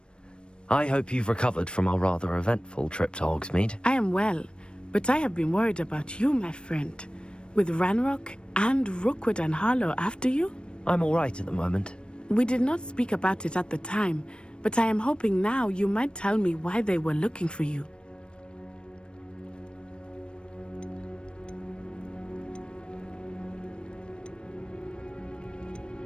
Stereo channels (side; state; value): right; late; 0.055 ms